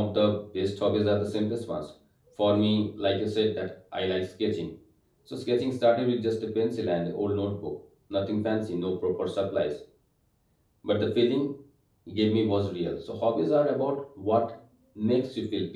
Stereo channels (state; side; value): identical; both; correlation 1.00